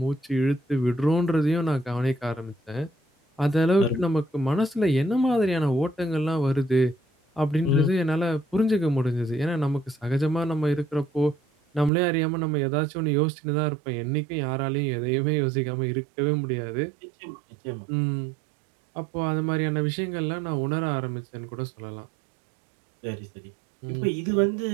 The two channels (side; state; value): left; drops out; at 11.9 s